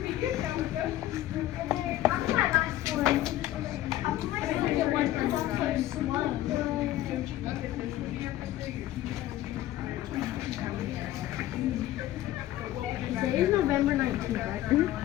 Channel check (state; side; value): quieter; right; 14.3 dB